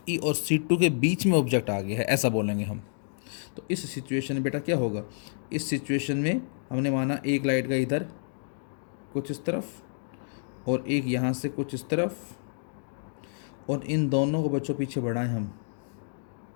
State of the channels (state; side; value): silent; right; digital silence